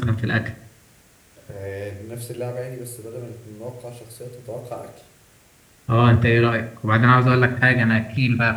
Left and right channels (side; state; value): both; identical; correlation 1.00